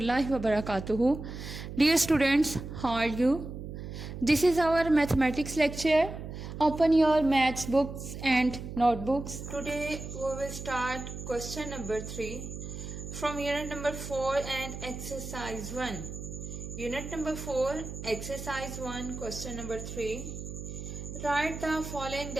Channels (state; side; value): noise; right; hum, 9 dB below the sound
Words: wabarakatuh. Dear students, how are you? This is our mathematics lecture. Open your maths books and notebooks. Today we will start question number 3 from unit number 4 and exercise 1. Unit number 4, exercise 1, question number 3. Write the following